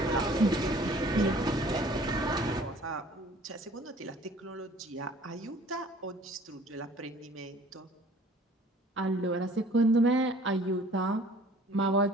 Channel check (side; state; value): both; normal; correlation 0.52